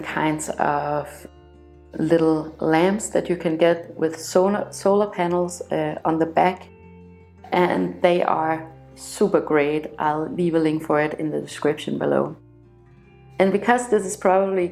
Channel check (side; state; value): both; identical; correlation 1.00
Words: kinds of little lamps that you can get with solar panels on the back, and they are super great. I'll leave a link for it in the description below. And because this is probably